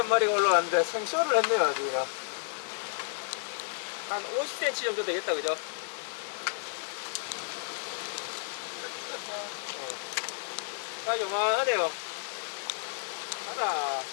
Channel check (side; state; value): right; silent; digital silence